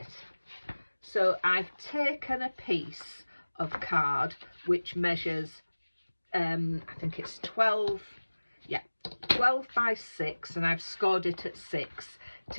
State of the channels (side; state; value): both; inverted; correlation -1.00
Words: So I've taken a piece of card which measures I think it's 12 by 6, and I've scored it at 6